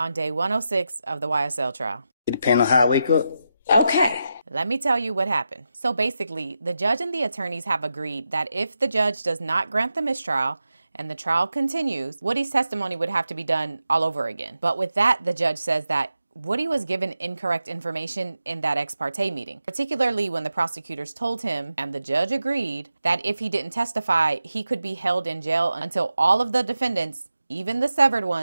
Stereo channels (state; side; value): inverted; both; correlation -0.88